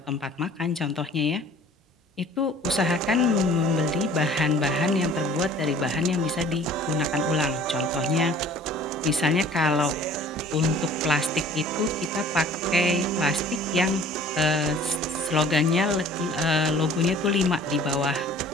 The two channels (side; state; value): both; normal; correlation 0.50